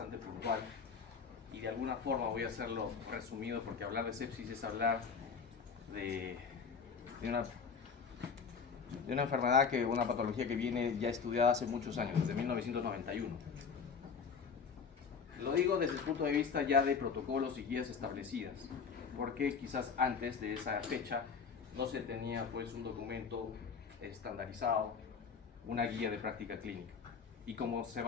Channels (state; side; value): quieter; right; 5.9 dB